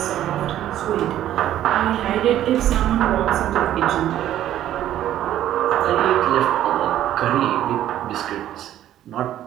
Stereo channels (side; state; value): left; quieter; 12.2 dB